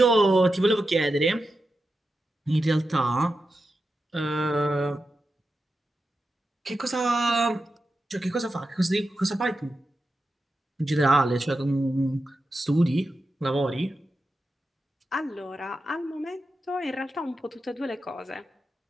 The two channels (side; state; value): both; normal; correlation 0.90